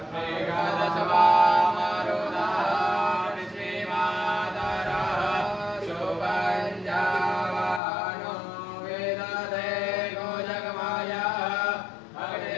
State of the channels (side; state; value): right; drops out; at 7.8 s